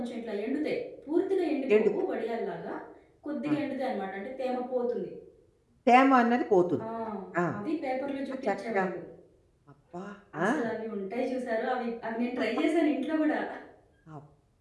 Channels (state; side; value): identical; both; correlation 1.00